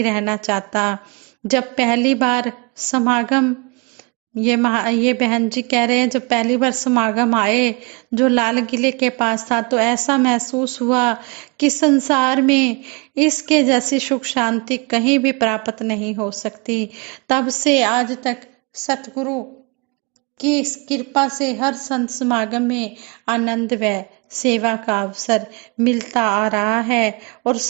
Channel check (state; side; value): quieter; left; 30.6 dB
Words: रहना चाहता। जब पहली बार समागम ये बहन जी कह रहे हैं जब पहली बार समागम आए जो लाल किले के पास था तो ऐसा महसूस हुआ कि संसार में इसके जैसी सुख शांति कहीं भी प्राप्त नहीं हो सकती। तब से आज तक सतगुरु की इस कृपा से हर संत समागम में आनंद व सेवा का अवसर मिलता आ रहा है और